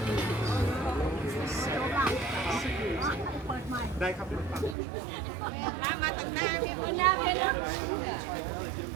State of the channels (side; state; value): left; drops out; at 4.8 s